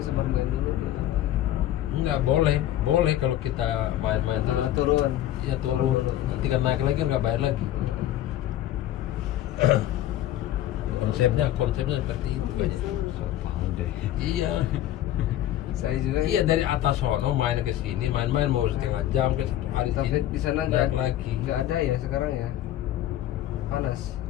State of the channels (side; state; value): right; quieter; 12.8 dB